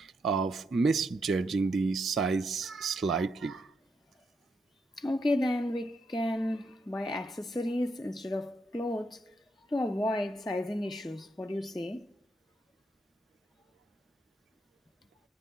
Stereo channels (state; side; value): normal; both; correlation 0.80